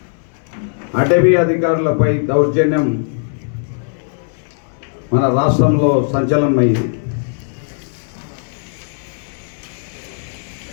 అటవీ అధికారులపై దౌర్జన్యం మన రాష్ట్రంలో సంచలనమైంది.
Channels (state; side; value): silent; right; digital silence